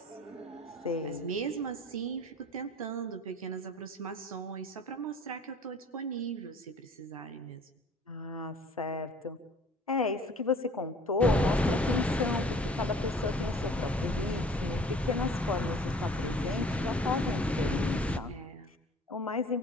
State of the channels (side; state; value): both; normal; correlation 0.50